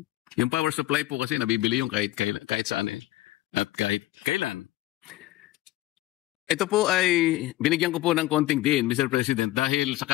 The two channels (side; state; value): right; quieter; 16.5 dB